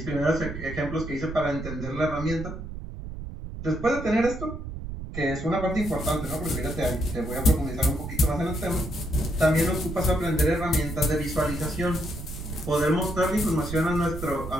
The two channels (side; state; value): right; noise; rumble, 9 dB below the sound